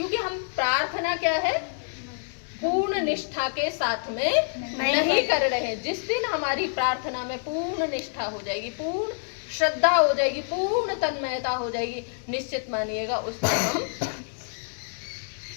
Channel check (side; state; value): right; silent; digital silence